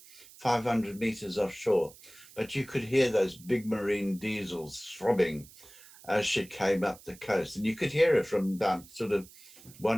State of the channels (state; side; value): noise; right; hiss, 21 dB below the sound